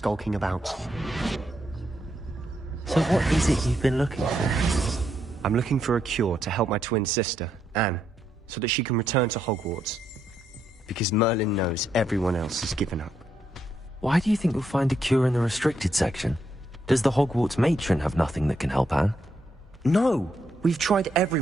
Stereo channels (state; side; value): normal; both; correlation 0.78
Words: about. So what is it you've been looking for? I'm looking for a cure to help my twin sister, Anne, so that she can return to Hogwarts. Because Merlin knows everyone else has given up. Why do you think you'll find a cure in the restricted section? Does the Hogwarts matron have nothing that can help Anne? No! We've tried